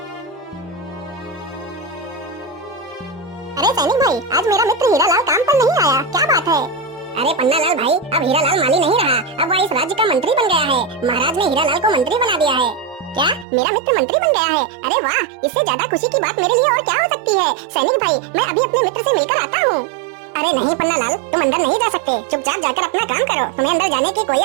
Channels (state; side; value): drops out; left; at 13.5 s